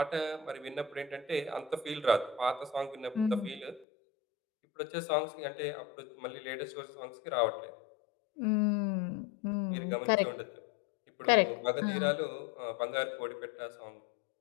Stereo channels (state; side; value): drops out; right; at 3.9 s